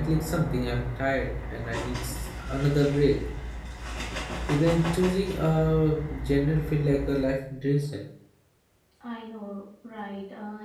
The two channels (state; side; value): identical; both; correlation 1.00